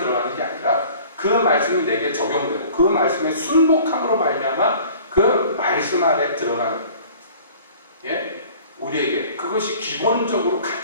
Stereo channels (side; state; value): both; inverted; correlation -0.48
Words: 게 아니라 그 말씀이 내게 적용되고 그 말씀의 순복함으로 말미암아 그 말씀 안에 들어가는, 예? 우리에게 그것이 기본적으로